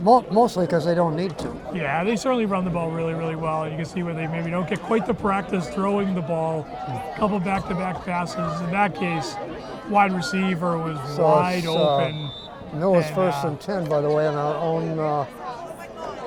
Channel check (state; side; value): identical; both; correlation 1.00